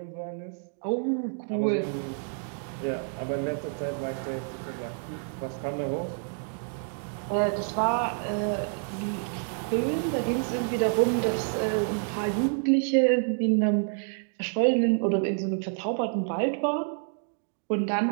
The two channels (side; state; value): left; silent; 59 dB below the other